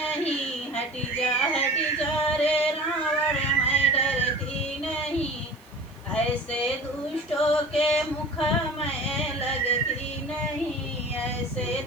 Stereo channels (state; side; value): noise; right; hiss, 29 dB below the sound